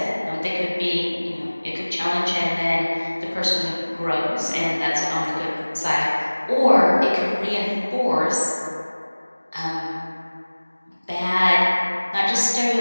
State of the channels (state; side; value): inverted; both; correlation -1.00